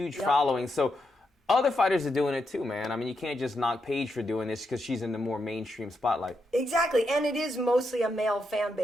following. So other fighters are doing it too, man. I mean, you can't just knock Paige for doing this because she's in the more mainstream spotlight. Exactly, and it is mostly a male fan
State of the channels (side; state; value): both; normal; correlation 0.83